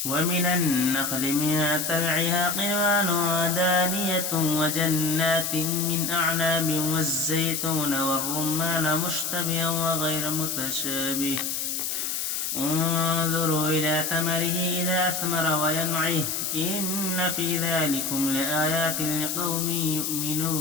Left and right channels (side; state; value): left; noise; hiss, 2 dB below the sound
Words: ومن النخل من طلعها قنوان دانية وجنات من أعناب والزيتون والرمان مشتبها وغير متشابه انظروا إلى ثمره إذا أثمر وينعه إن في ذلكم لآيات لقوم